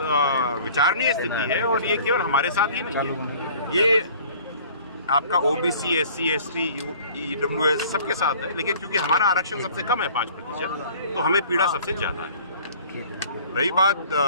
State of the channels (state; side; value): inverted; both; correlation -0.49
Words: विचारणीय स्थिति है, और ये केवल हमारे साथ ही नहीं है, ये आपका ओबीसी, एससी, एसटी, ईडब्ल्यूएस सबके साथ है। लेकिन क्योंकि हमारा आरक्षण सबसे कम है 5%, तो हमें पीड़ा सबसे ज्यादा है। रही बात